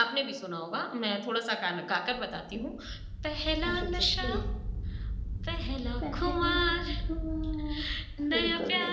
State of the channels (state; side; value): identical; both; correlation 1.00